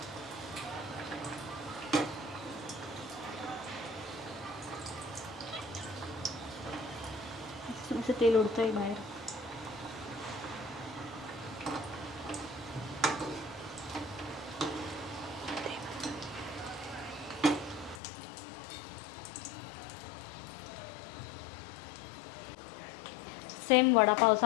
असं तेल उडतंय बाहेर. सेम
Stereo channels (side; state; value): right; drops out; at 18.0 s